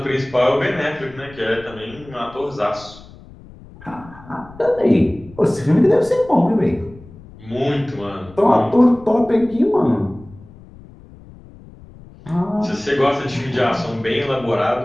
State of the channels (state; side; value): noise; left; rumble, 21 dB below the sound